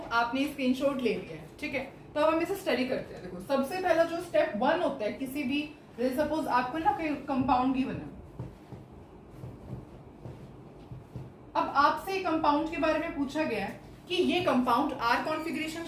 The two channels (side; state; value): both; identical; correlation 1.00